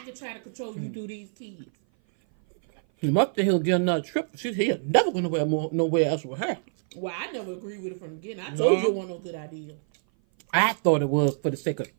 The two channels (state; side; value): silent; left; 57 dB below the other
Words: can try to control you through these kids. He must have he'll get another trip. He's never going to nowhere else with her. Well, I never agreed with it from the beginning. I told you it wasn't no good idea. I thought it was for the sake of